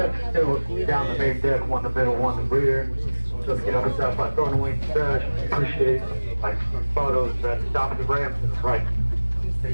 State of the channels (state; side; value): inverted; both; correlation -1.00